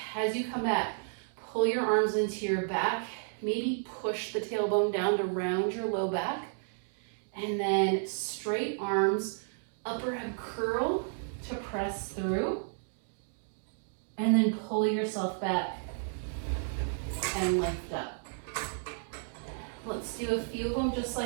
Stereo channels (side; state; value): left; silent; digital silence